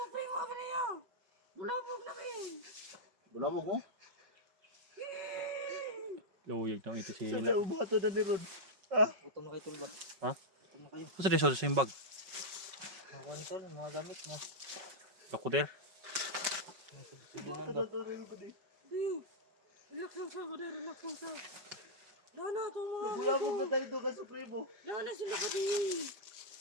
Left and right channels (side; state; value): left; late; 5.4 ms